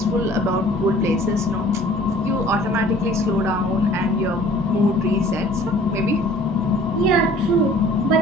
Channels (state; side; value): normal; both; correlation 0.51